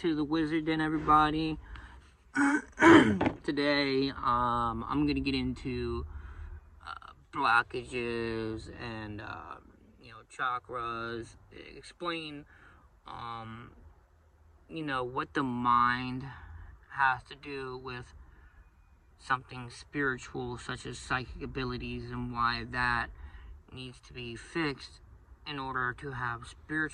to the Wizard Den, everybody. Today, I'm gonna get into blockages and, chakras, explain, what the mind has to do with something spiritual, such as psychic abilities, and why that needs to be fixed in order to have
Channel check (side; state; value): both; identical; correlation 1.00